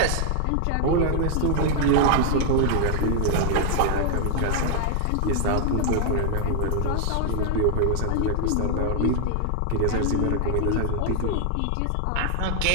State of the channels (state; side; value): different; both; correlation 0.00